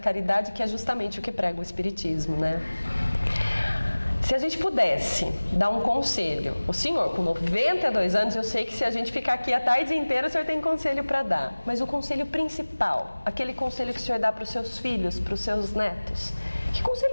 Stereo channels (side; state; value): both; inverted; correlation -1.00